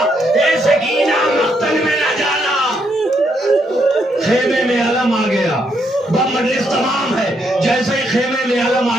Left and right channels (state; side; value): normal; both; correlation 0.76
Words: اے سکینہ مقتل میں نہ جانا. خیمے میں علم آ گیا، بم مجلس تمام ہے. جیسے ہی خیمے میں علم